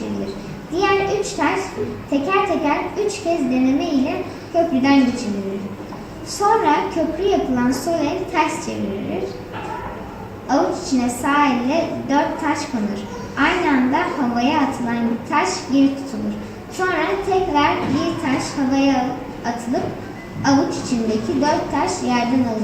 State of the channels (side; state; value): both; identical; correlation 1.00